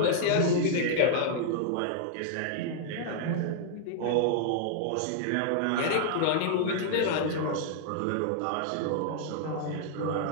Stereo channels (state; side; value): different; both; correlation -0.01